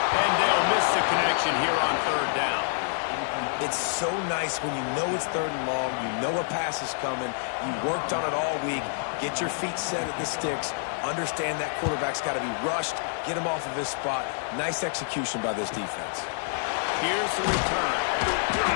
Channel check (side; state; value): right; silent; digital silence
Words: And they'll miss the connection here on 3rd down. It's so nice when you know it's 3rd and long, you know a pass is coming, you worked on it all week, get your feet set at the sticks, understand that quarterback's got to be rushed, get him off of his spot. Nice execution by this defense. Here's the return.